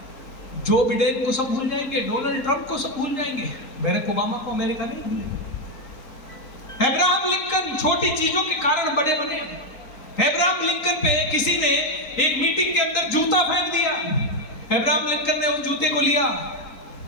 जो बिडेन को सब भूल जाएंगे, डोनाल्ड ट्रंप को सब भूल जाएंगे, बैरक ओबामा को अमेरिका नहीं भूलेगा। अब्राहम लिंकन छोटी चीजों के कारण बड़े बने। अब्राहम लिंकन पे किसी ने एक मीटिंग के अंदर जूता फेंक दिया। अब्राहम लिंकन ने उस जूते को लिया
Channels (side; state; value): right; late; 3.9 ms